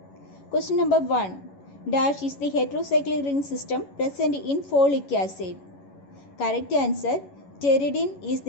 Question number 1. Dash is the heterocyclic ring system present in folic acid. Correct answer, pteridine is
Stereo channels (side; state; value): right; late; 11 ms